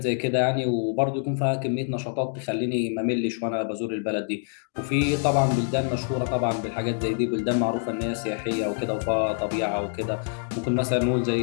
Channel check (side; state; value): right; silent; digital silence